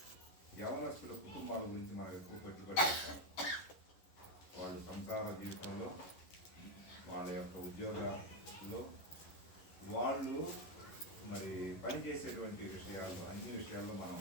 యవనస్తుల కుటుంబాల గురించి మనం ఎక్కువ పెట్టుబడి పెట్టాం. వాళ్ళు సంసార జీవితంలో, వాళ్ళ యొక్క ఉద్యోగాల్లో వాళ్ళు మరి పనిచేసేటువంటి విషయాలు, అన్ని విషయాల్లో మనం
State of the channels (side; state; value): right; late; 11 ms